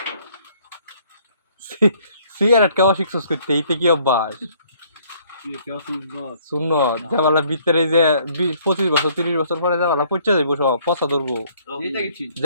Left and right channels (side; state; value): both; inverted; correlation -0.62